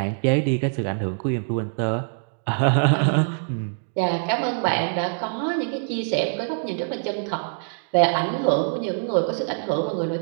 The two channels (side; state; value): left; silent; digital silence